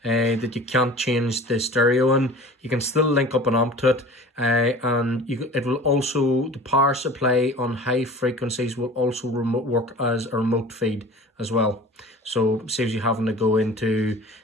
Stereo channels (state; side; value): normal; both; correlation 0.41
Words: that you can't change the stereo in, you can still link up an amp to it, and it will also, the power supply on high frequencies will also work as a remote feed as well. So saves you having to go into